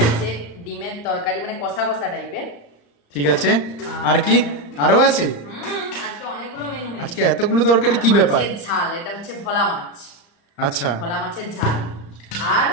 ডিমের তরকারি, মানে কষা কষা টাইপের। ঠিক আছে, আর কি আরো আছে? আজকে অনেকগুলো মেনু হয়েছে। আজকে এতগুলো তরকারি, কি ব্যাপার? মাছের ঝাল, এটা হচ্ছে ভোলা মাছ। আচ্ছা। ভোলা মাছের ঝাল। আর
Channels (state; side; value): late; right; 35 ms